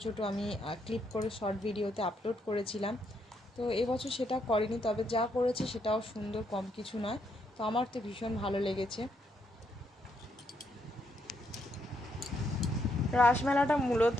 ছোট আমি ক্লিপ করে শর্ট ভিডিওতে আপলোড করেছিলাম। তো এবছর সেটা করেনি, তবে যা করেছে সেটাও সুন্দর, কম কিছু নয়। তো আমার তো ভীষণ ভালো লেগেছে। রাসমেলাটা মূলত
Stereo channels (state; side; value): normal; both; correlation 0.76